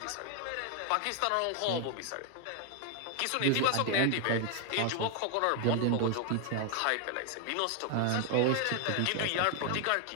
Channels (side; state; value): both; different; correlation 0.00